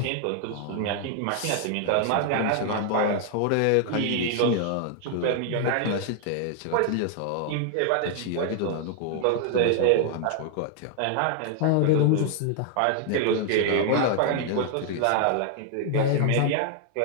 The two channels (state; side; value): different; both; correlation 0.00